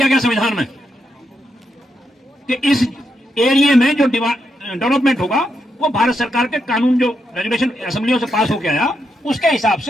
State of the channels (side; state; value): both; normal; correlation 0.82